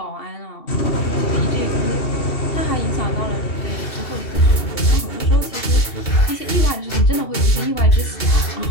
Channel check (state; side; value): late; right; 2.7 ms